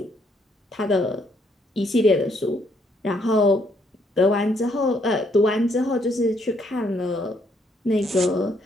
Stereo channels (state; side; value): normal; both; correlation 0.71